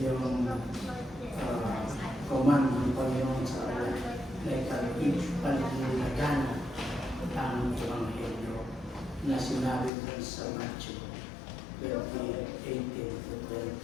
command ng Panginoon sa kanila. Like paligana ang Ebanghelyo na sinabi doon sa Matthew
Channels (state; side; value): drops out; right; at 9.9 s